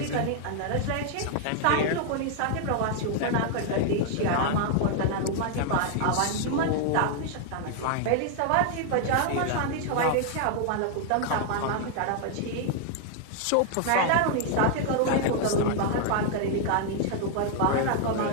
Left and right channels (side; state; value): both; different; correlation 0.00